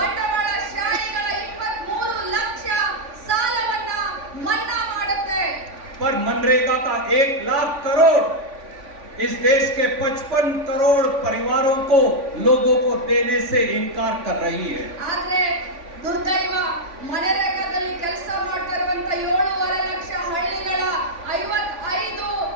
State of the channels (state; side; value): late; left; 3.5 ms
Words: 23 ಲಕ್ಷ ಸಾಲವನ್ನ ಮನ್ನಾ ಮಾಡುತ್ತೆ. पर मनरेगा का 1 लाख करोड़ इस देश के 55 करोड़ परिवारों को लोगों को देने से इनकार कर रही है। ಆದ್ರೆ ದುರ್ದೈವ ಮನರೇಗಾದಲ್ಲಿ ಕೆಲಸ ಮಾಡ್ತಾ ಇರುವಂತ 7.5 ಲಕ್ಷ ಹಳ್ಳಿಗಳ 55